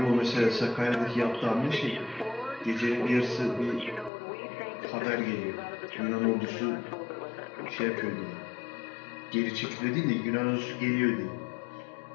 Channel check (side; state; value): right; drops out; at 4.1 s